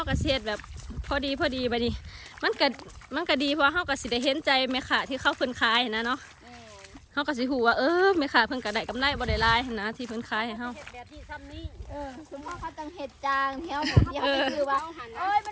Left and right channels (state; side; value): identical; both; correlation 1.00